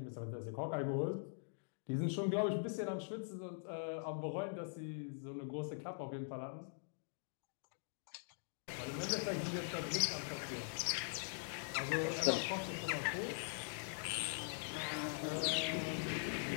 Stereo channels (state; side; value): silent; right; digital silence